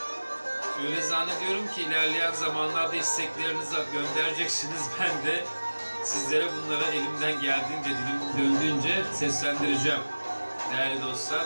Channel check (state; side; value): inverted; both; correlation -1.00